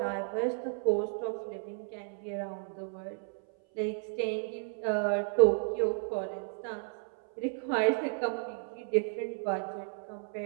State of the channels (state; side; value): silent; left; 56 dB below the other